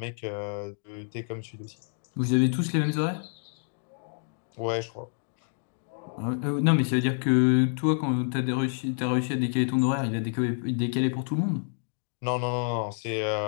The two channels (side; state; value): right; silent; digital silence